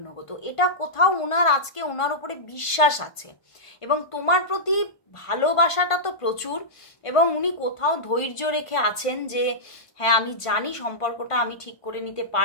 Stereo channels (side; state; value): right; late; 1.5 ms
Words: নেবো। তো এটা কোথাও আজকে ওনার উপরে বিশ্বাস আছে, এবং তোমার প্রতি ভালোবাসাটা তো প্রচুর, এবং উনি কোথাও ধৈর্য রেখে আছেন যে হ্যাঁ আমি জানি সম্পর্কটা আমি ঠিক করে নিতে